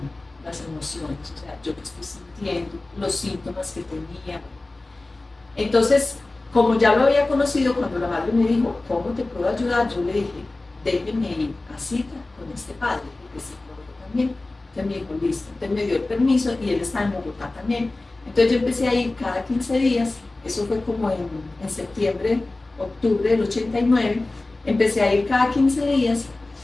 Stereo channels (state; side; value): quieter; right; 3.0 dB